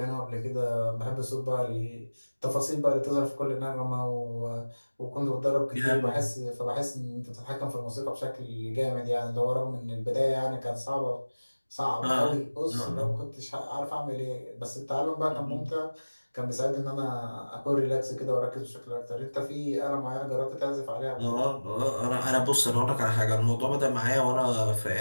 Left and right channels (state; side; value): inverted; both; correlation -1.00